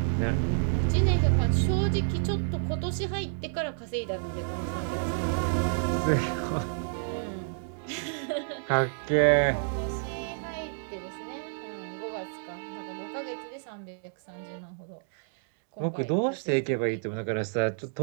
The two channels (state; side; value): silent; left; digital silence